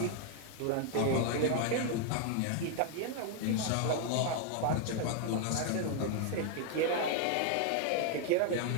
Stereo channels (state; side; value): different; both; correlation 0.00